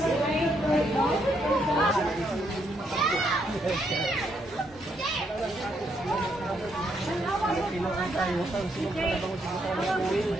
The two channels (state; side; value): normal; both; correlation 0.75